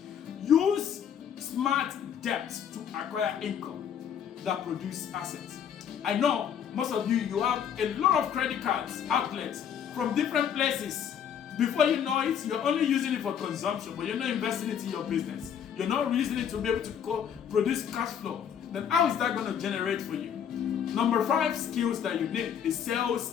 Use smart debt to acquire income that produce assets. I know most of you have a lot of credit cards, outlets from different places. Before you know it, you're only using it for consumption, but you're not investing it in your business. You're not using it to be able to produce cash flow. Then how is that going to generate for you? Number 5 skills that you need is sales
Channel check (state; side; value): quieter; right; 8.4 dB